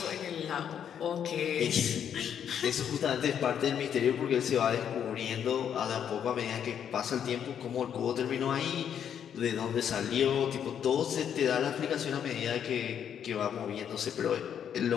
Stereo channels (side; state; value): right; quieter; 8.7 dB